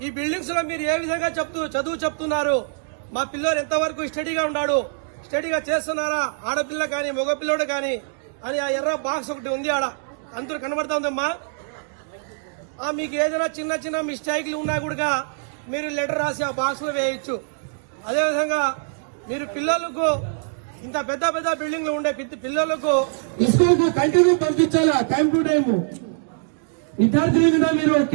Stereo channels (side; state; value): left; silent; digital silence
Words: ఈ బిల్డింగ్స్ లో మీరు ఏ విధంగా చదువు చెప్తున్నారు, మా పిల్లలు ఎంతవరకు స్టడీగా ఉన్నాడు, స్టడీగా చేస్తున్నారా, ఆడపిల్ల కానీ మగ పిల్లడు కానీ అని ఆ ఎర్ర బాక్స్ ఒకటి ఉంది ఆడ అందరూ కనబడతా ఉందమ్మా. మీకు ఏదైనా చిన్న చిన్న మిస్టేక్లు ఉన్నా కూడా మీరు లెటర్ రాసి ఆ బాక్స్ లో వేయచ్చు. అదేవిధంగా మీరు పిల్లలకు ఇంత పెద్ద పెద్ద బిల్డింగ్లు ఉండే పిల్లలకు స్కూల్ కు కంటిన్యూ పంపించాలా, టైం టు టైం. విద్యార్థుల మీద మీరు